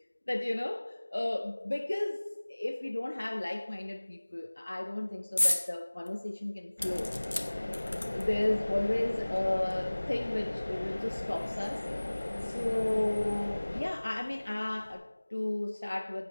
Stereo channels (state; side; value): inverted; both; correlation -1.00